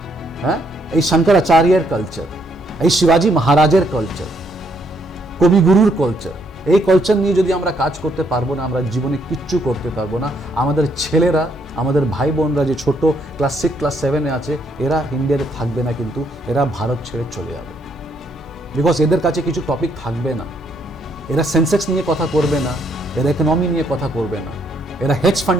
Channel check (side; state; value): both; normal; correlation 0.72